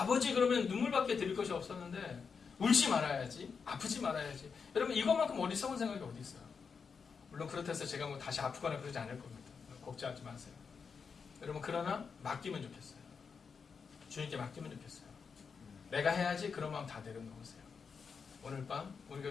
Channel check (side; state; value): right; quieter; 5.7 dB